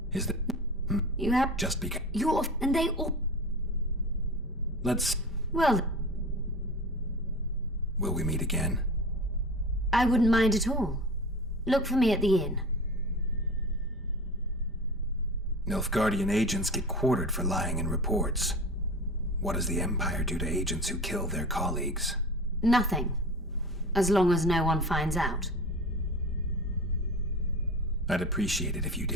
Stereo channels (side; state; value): both; normal; correlation 0.33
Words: Is that... You have... Just because... You're... and they all... Let's... Well... Will we meet again? I wouldn't mind at all. Look for me at the inn. Nilfgaardian agents get quartered for lying in reports. What does the Empire do to agents who kill their colleagues? Nothing. As long as no one finds out. I'd appreciate it if you